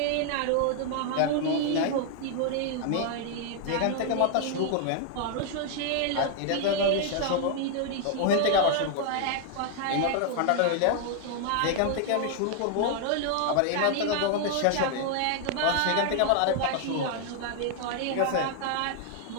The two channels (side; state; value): both; different; correlation 0.00